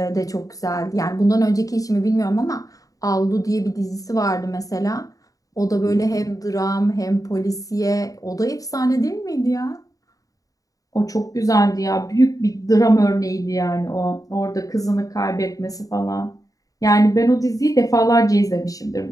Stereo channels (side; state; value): right; late; 0.17 ms